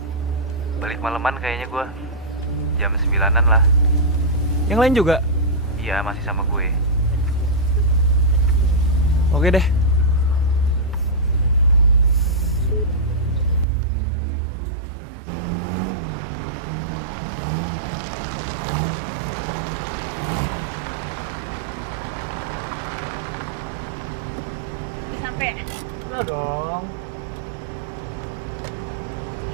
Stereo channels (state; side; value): drops out; left; at 13.7 s